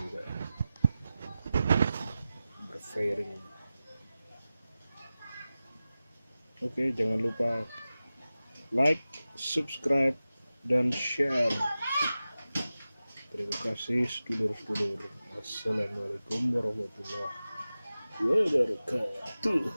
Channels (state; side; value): inverted; both; correlation -0.95